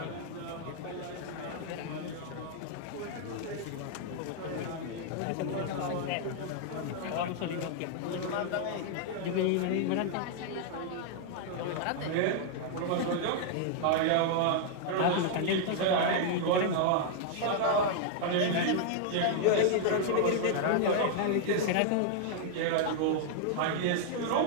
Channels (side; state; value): both; different; correlation 0.00